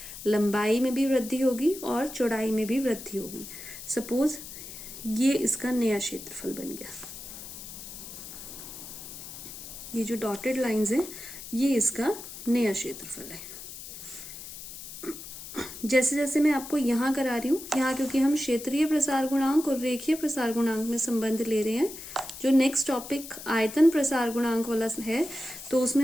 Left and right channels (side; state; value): left; noise; hiss, 12 dB below the sound